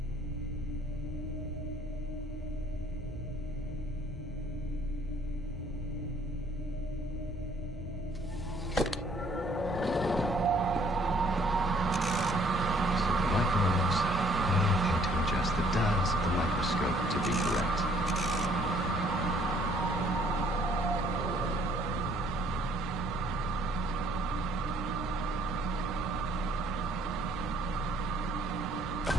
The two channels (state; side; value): normal; both; correlation 0.63